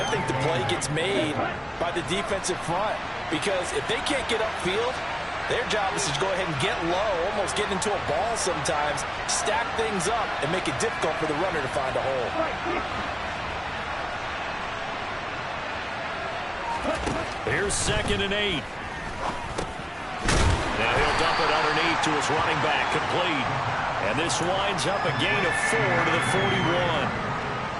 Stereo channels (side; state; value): both; identical; correlation 1.00